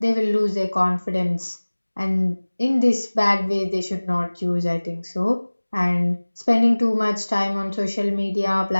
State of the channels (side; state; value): both; inverted; correlation -1.00